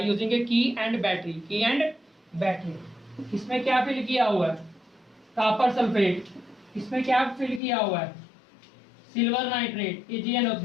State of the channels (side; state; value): right; drops out; at 7.6 s